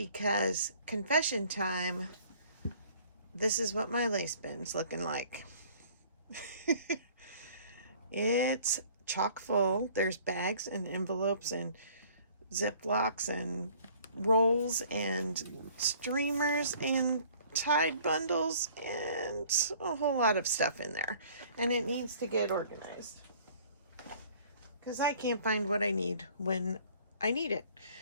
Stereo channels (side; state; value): both; inverted; correlation -0.54